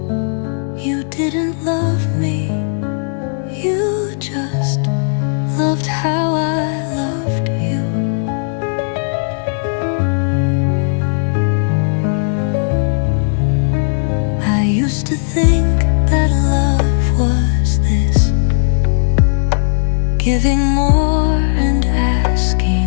You didn't love me, you just loved how I loved you. I used to think that love was this, giving more and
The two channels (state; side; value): silent; right; 60 dB below the other